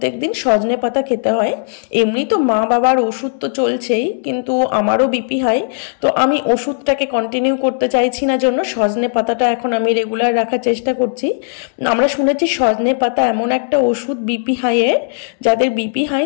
দিন সজনে পাতা খেতে হয়। এমনি তো মা বাবার ওষুধ তো চলছেই, কিন্তু আমারও বিপি হাই। তো আমি ওষুধটাকে কন্টিনিউ করতে চাইছি না, জন্য সজনে পাতাটা এখন আমি রেগুলার রাখার চেষ্টা করছি। আমরা শুনেছি সজনে পাতা এমন একটা ওষুধ বিপি হাইয়ের, যাদের বিপি হাই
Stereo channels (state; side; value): silent; right; 69 dB below the other